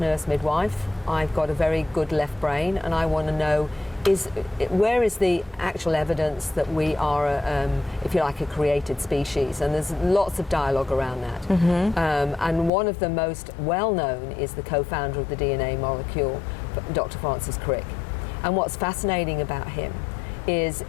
midwife. I've got a very good left brain, and I want to know where is the actual evidence that we are, if you like, a created species? And there's lots of dialogue around that. And one of the most well-known is the co-founder of the DNA molecule, Dr. Francis Crick. And what's fascinating about him is,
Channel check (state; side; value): drops out; right; at 12.7 s